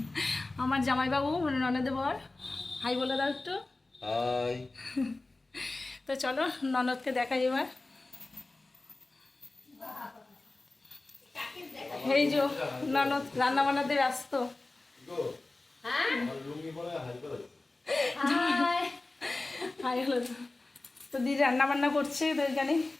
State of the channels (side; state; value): right; quieter; 3.1 dB